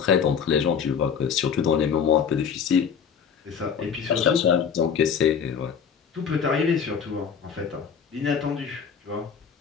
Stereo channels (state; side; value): quieter; right; 7.0 dB